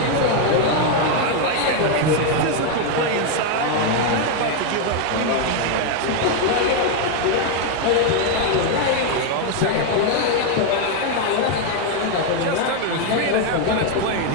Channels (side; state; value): both; different; correlation 0.01